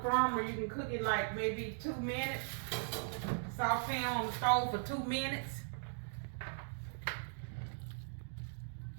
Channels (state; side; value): silent; left; digital silence